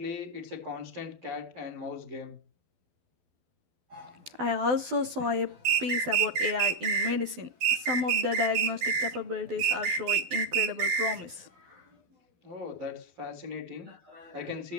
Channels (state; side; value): late; left; 12 ms